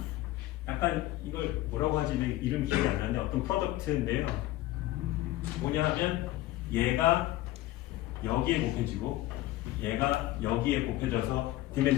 약간 이걸 뭐라고 하지? 이름 기억이 안 나는데 어떤 프로덕트인데요. 뭐냐 하면 얘가 여기에 곱해지고 얘가 여기에 곱해져서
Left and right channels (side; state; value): right; quieter; 16.1 dB